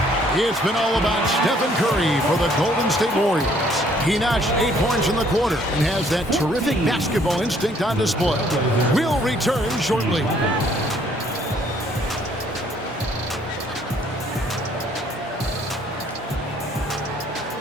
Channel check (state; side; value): normal; both; correlation 0.63